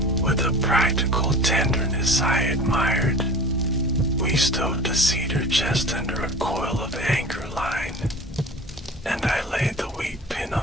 With a practical tenderness I admired, we stowed the cedar chest under a coil of anchor line, and I laid the wheat pin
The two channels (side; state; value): both; normal; correlation 0.38